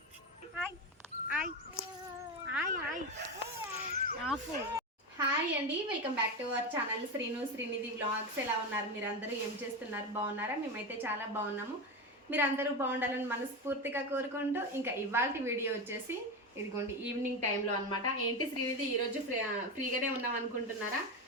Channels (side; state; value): both; normal; correlation 0.17